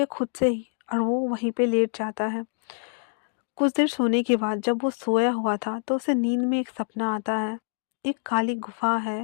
खुद से ही और वो वहीं पे लेट जाता है। कुछ देर सोने के बाद जब वो सोया हुआ था तो उसे नींद में एक सपना आता है। एक काली गुफा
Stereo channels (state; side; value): silent; right; digital silence